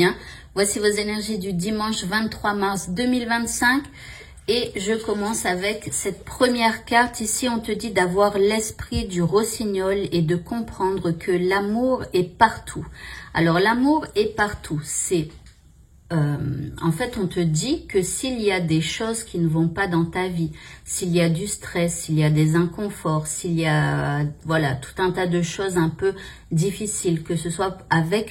Voici vos énergies du dimanche 23 mars 2025 et je commence avec cette première carte. Ici, on te dit d'avoir l'esprit du rossignol et de comprendre que l'amour est partout. Alors, l'amour est partout. En fait, on te dit que s'il y a des choses qui ne vont pas dans ta vie, s'il y a du stress, s'il y a des inconforts, s'il y a voilà, tout un tas de choses un peu difficiles, que ce soit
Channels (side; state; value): both; identical; correlation 1.00